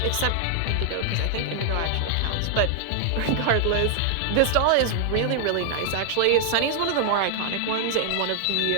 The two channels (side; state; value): both; different; correlation 0.00